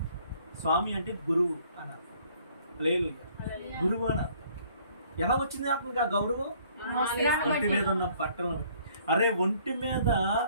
స్వామి అంటే గురువు అని అర్థం. హల్లెలూయా, గురువు అని అర్థం. ఎలా వచ్చింది అతనికి ఆ గౌరవం? ఒంటి మీద ఉన్న బట్టలను బట్టి. అరే, ఒంటి మీద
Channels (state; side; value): inverted; both; correlation -0.60